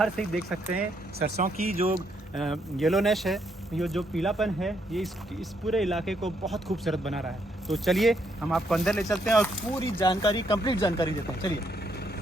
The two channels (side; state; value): both; normal; correlation 0.74